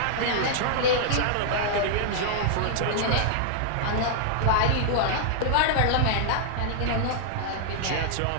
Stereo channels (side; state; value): both; different; correlation -0.01